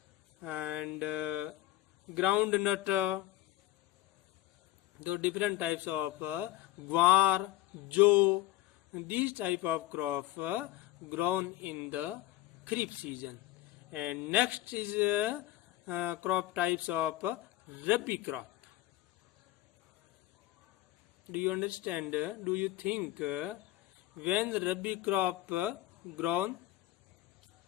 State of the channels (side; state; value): right; quieter; 15.8 dB